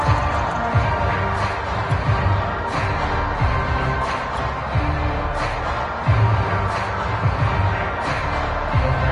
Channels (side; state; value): both; identical; correlation 1.00